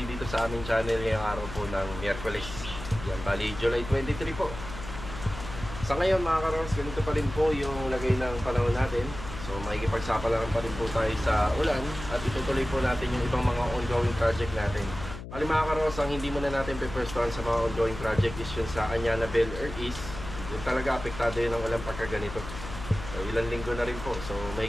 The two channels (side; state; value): left; noise; hum, 11 dB below the sound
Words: dito sa aming channel ngayong araw po ng Miyerkules. Yan, bali July 23 po. Sa ngayon mga karongos, ganito pa rin po yung lagay ng panahon natin. So makikipagsapalaran pa rin po tayo sa ulan at itutuloy po natin yung ibang mga ongoing project natin. Bali mga karongos, ang hindi muna natin pe-firstuhan sa mga ongoing project is yun sa Anyana Bel Air East. Yung talaga apektado yun ng ulan pagka ganito. So ilang linggo na rin po, so